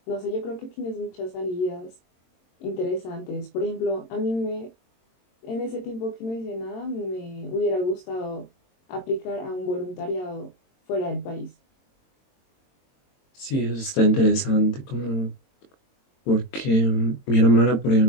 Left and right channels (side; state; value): right; late; 22 ms